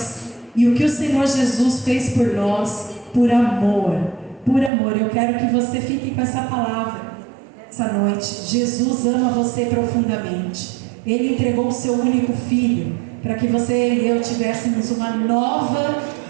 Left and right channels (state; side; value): drops out; left; at 4.7 s